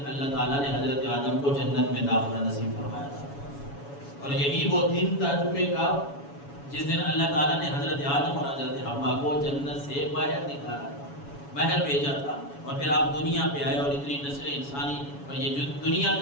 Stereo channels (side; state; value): right; late; 7.1 ms